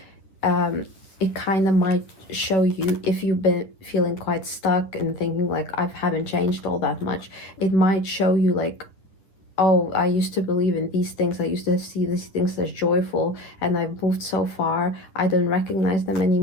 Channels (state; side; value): late; right; 10 ms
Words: it kind of might show you, if you've been feeling quite stuck and thinking like I haven't changed all that much, it might show you like, oh, I used to believe in these things, I used to see these things as joyful, and I've moved so far, I don't recognize them